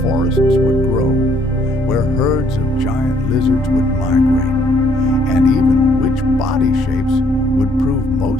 forests would grow, where herds of giant lizards would migrate, and even which body shapes would prove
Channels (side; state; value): both; normal; correlation 0.65